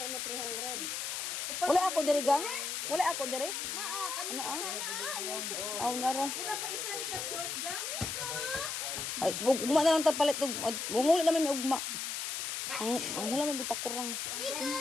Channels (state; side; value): noise; left; hiss, 3 dB below the sound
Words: mo 300. Wala ako diri gang? Wala ako diri? Naa, kanina sana. Aw nara. Pa isa ni ka short gang. Ay, ugma na lang ta palit ug wala naman may ugma. Ang hula man bitakurang.